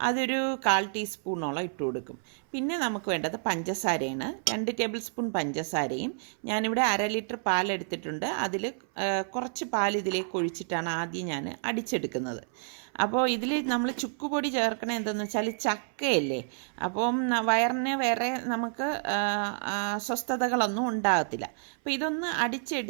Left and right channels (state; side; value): silent; left; 58 dB below the other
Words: അതൊരു 1/4 ടീസ്പൂണോളം ഇട്ട് കൊടുക്കും. പിന്നെ നമുക്ക് വേണ്ടത് പഞ്ചസാരയാണ്. 2 ടേബിൾ സ്പൂൺ പഞ്ചസാരയും ഞാനിവിടെ 1/2 ലിറ്റർ പാലെടുത്തിട്ടുണ്ട്. അതിൽ കുറച്ച് പാൽ ഇതിലേക്ക് ഒഴിച്ചിട്ടാണ് ആദ്യം ഞാൻ അടിച്ചെടുക്കുന്നത്. അപ്പോൾ ഇതിൽ നമ്മൾ ചുക്കുപൊടി ചേർക്കണത് എന്തെന്ന് വെച്ചാൽ ചക്കയല്ലേ, അപ്പം വയറിന് വേറെ നമുക്ക് അസ്വസ്ഥതകളൊന്നും ഉണ്ടാകത്തില്ല. അപ്പോൾ ഇതൊന്ന്